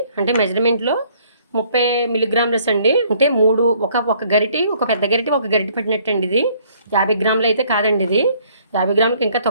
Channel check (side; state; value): both; inverted; correlation -0.61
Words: అంటే మెజర్మెంట్లో 30 మిల్లీగ్రాములస్ అండి. అంటే 3 ఒక గరిటి, ఒక పెద్ద గరిటి, ఒక గరిటి పట్టినట్టు అండి. ఇది 50 గ్రాములు అయితే కాదండి. ఇది 50 గ్రాములకి ఇంకా